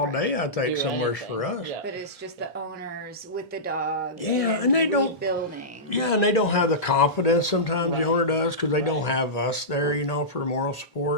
day, I think, Do somewhere anything. for us. Yeah. But it's just the owners with the dog. Yeah, and they don't- rebuilding. Yeah, and they don't have the confidence sometimes the Right. owner does because they don't Right. have us there, for moral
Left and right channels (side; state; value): both; normal; correlation -0.16